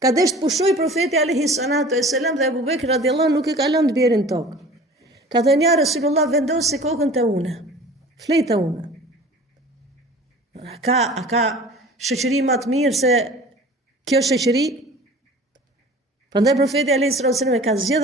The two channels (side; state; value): both; normal; correlation 0.43